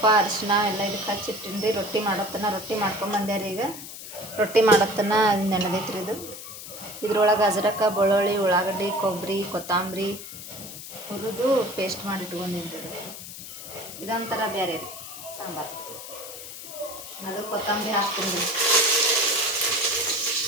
ಅರಿಶಿನ ಎಲ್ಲ ಇದಕ್ಕೆ ಹಚ್ಚಿಟ್ಟಿನ್ರಿ. ರೊಟ್ಟಿ ಮಾಡತ್ತನ. ರೊಟ್ಟಿ ಮಾಡ್ಕೊಂಬಂದೆ ರೀ. ಈಗ ರೊಟ್ಟಿ ಮಾಡತ್ತನ ನೆನೆದೈತ್ರಿ ಇದು. ಇದ್ರೊಳಗೆ ಅಜ್ರಕ, ಬೆಳ್ಳುಳ್ಳಿ, ಉಳ್ಳಾಗಡ್ಡಿ, ಕೊಬ್ಬರಿ, ಕೊತ್ತಂಬರಿ ಹುರಿದು ಪೇಸ್ಟ್ ಮಾಡಿ ಇಟ್ಕೊಂಡಿನ್ರಿ. ಇದೊಂಥರ ಬೇರೆ ರೀ ಸಾಂಬಾರು. ಅದು ಕೊತ್ತಂಬರಿ ಹಾಕ್ತೀನಿ ರೀ.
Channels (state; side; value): noise; left; hiss, 12 dB below the sound